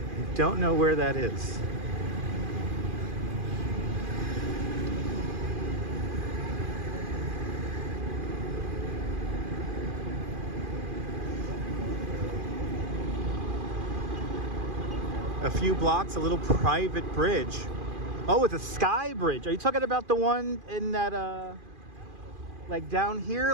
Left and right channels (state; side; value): late; left; 2.4 ms